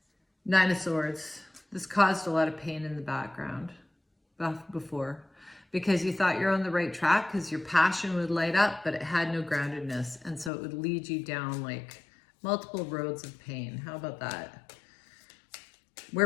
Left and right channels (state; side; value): drops out; right; at 10.5 s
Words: of Swords. This caused a lot of pain in the background before. Because you thought you're on the right track because your passion would light up, but it had no groundedness. And so it would lead you down like multiple roads of pain. How about that?